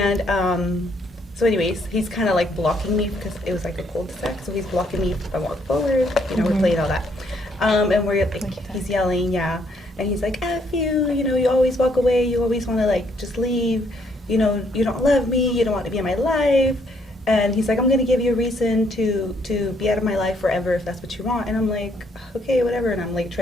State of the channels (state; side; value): normal; both; correlation 0.70